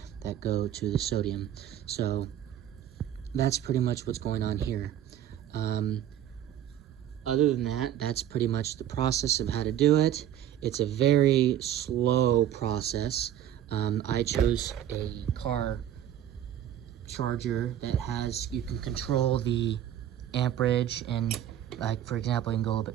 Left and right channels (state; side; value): quieter; left; 11.0 dB